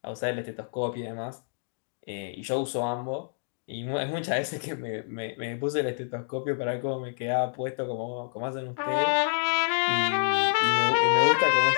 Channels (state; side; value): silent; right; digital silence